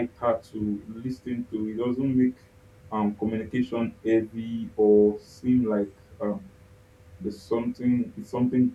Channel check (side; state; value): both; identical; correlation 1.00